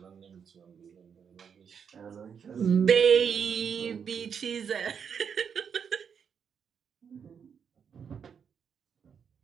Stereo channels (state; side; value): quieter; left; 7.1 dB